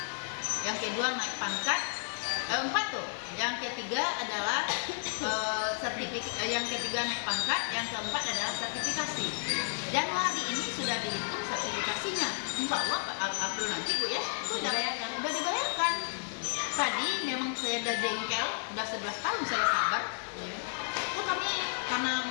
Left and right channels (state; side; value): silent; right; digital silence